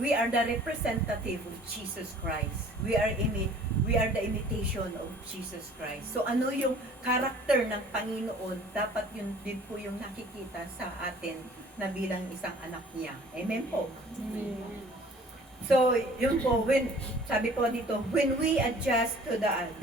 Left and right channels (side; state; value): both; normal; correlation 0.51